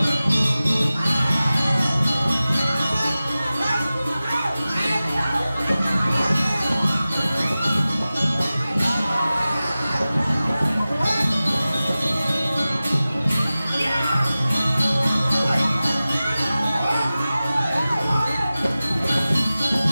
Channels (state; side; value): inverted; both; correlation -0.96